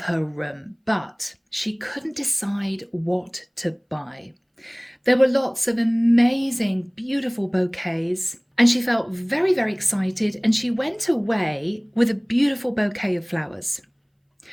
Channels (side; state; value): both; identical; correlation 1.00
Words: her room, but she couldn't decide what to buy. There were lots of amazing, beautiful bouquets, and she felt very, very excited, and she went away with a beautiful bouquet of flowers.